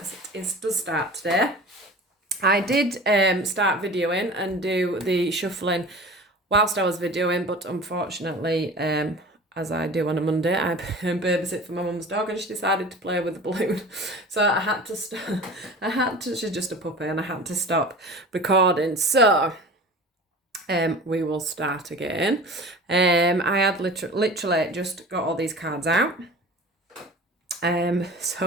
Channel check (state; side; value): normal; both; correlation 0.38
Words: it does start today. I did start videoing and do the shuffling whilst I was videoing, but unfortunately, as I do on a Monday, I babysit for my mum's dog, and she decided to play with the balloon. So I had to. She's just a puppy, and I had to stop recording. So we will start again. I had literally just got all these cards out.